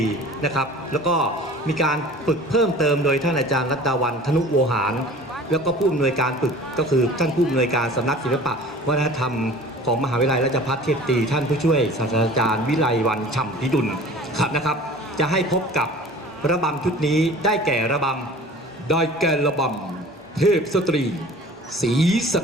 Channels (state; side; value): normal; both; correlation 0.44